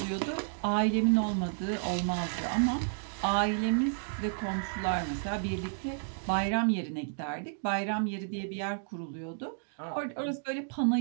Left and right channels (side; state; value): left; silent; digital silence